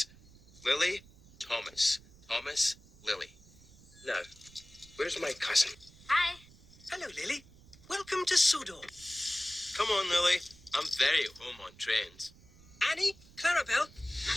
Lily, Thomas. Thomas, Lily. Now, where's my cousin? Hi. Hello, Lily. Welcome to Sodor. Come on, Lily. I'm very at home on trains. Annie, Clarabelle,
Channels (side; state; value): right; noise; rumble, 24 dB below the sound